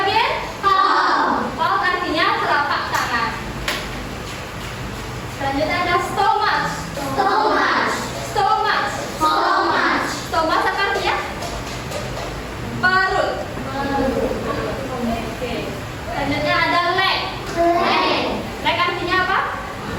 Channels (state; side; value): identical; both; correlation 1.00